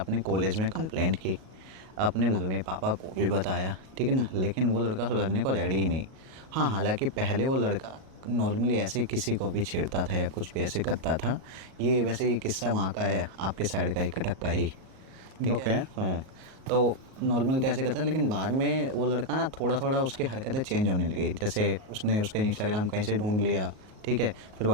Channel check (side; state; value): left; late; 38 ms